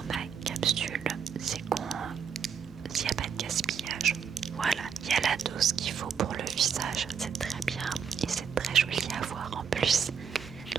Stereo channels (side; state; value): left; quieter; 7.0 dB